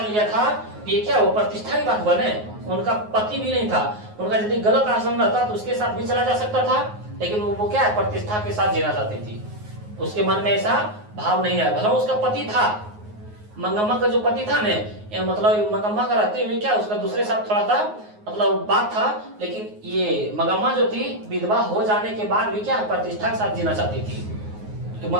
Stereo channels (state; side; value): late; left; 9.5 ms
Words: लिया था, ये क्या वो प्रतिष्ठा की बात बने? उनका पति भी नहीं था, उनका यदि गलत आचरण रहता तो उसके साथ भी चला जा सकता था, लेकिन वो क्या है? प्रतिष्ठा के साथ जीना चाहती थी। उसके मन में ऐसा भाव नहीं आया। भला उसका पति था, मंगम्मा का जो पति था ने, मतलब मंगम्मा का रहते हुए क्या उसका दूसरे साथ थोड़ा सा मतलब बात था, लेकिन ये मंगम्मा जो थी विधवा हो जाने के बाद भी क्या प्रतिष्ठा के साथ जीना चाहती थी। तो